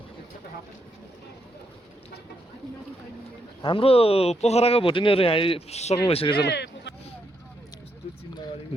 हाम्रो पोखराको भोटिनीहरू यहाँ आइसक्नु भइसकेछ ल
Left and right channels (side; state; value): both; normal; correlation 0.79